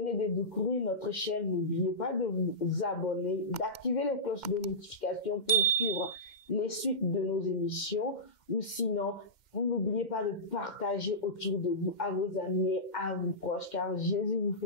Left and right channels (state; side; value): late; right; 2.1 ms